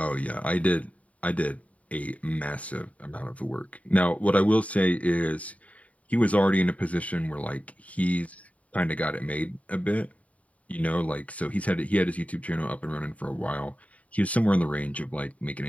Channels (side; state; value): right; late; 0.068 ms